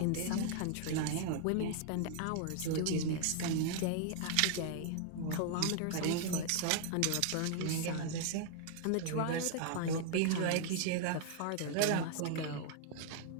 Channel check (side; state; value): both; different; correlation 0.00